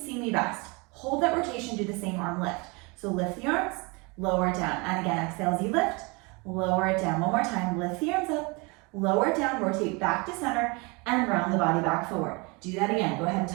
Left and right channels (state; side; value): quieter; left; 28.6 dB